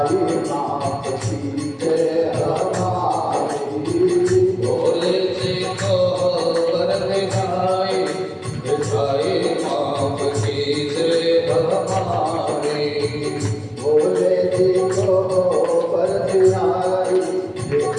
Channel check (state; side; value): identical; both; correlation 1.00